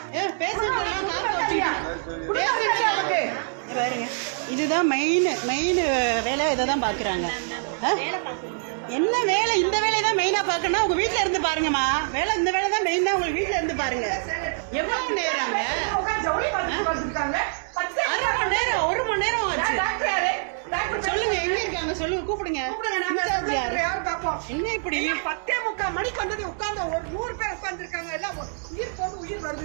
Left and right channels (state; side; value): silent; left; digital silence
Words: பாருங்க. இதுதான் மெயின் வேலை, இதை தான் பாக்குறாங்க. என்ன வேலை? இந்த வேலையை தான் மெயினா பாக்கணும். உங்க வீட்டுல இருந்து பாருங்கம்மா, வேலை இந்த வேலை தான் மெயின் தான். உங்களுக்கு வீட்டுல இருந்து பாருங்க. எவ்வளவு நேரங்க? அரை மணி நேரம் 1 மணி நேரம் ஆச்சு. சொல்லுங்க, எங்க இருக்காங்க சொல்லுங்க, கூப்பிடுங்க. இன்சார்ஜ் யாரு? என்ன இப்படி 10:45 மணிக்கு வந்தது உட்கார்ந்து ஒரு 100 பேர் உட்கார்ந்துருக்காங்க. எல்லாம் உயிர் போது உயிர்